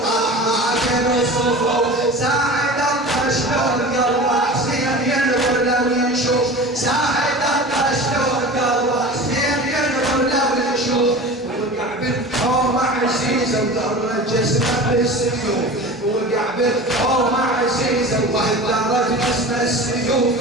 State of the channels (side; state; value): both; normal; correlation 0.35